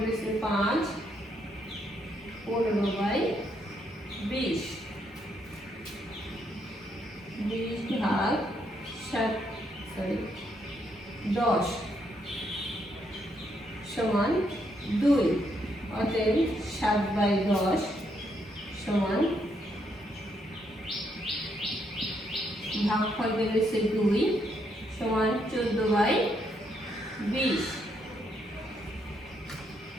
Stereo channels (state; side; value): normal; both; correlation 0.75